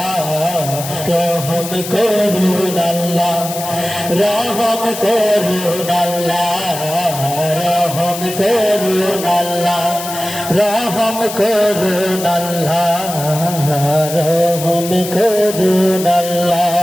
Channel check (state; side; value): noise; left; hiss, 9 dB below the sound